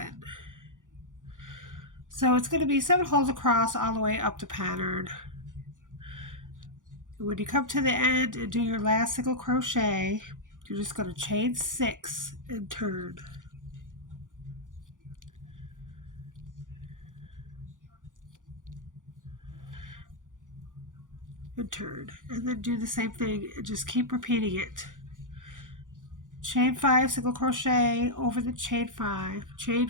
So it's going to be 7 holes across all the way up the pattern. When you come to the end and do your last single crochet, you're just going to chain 6 and turn. And turn. And then do the same thing and just keep repeating it. Chain 5, single crochet over the chain 5, chain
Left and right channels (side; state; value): left; late; 0.88 ms